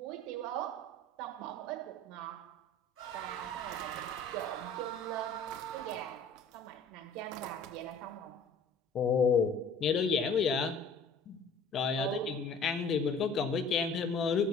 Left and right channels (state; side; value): quieter; right; 3.3 dB